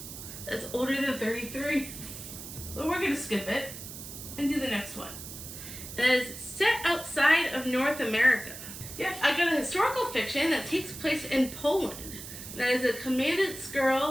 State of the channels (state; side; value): noise; right; hiss, 11 dB below the sound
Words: that's older than 33. but we're going to skip it and do the next one. It is set outside of North America. Yes, I got a historical fiction that takes place in Poland. That is A Commandant's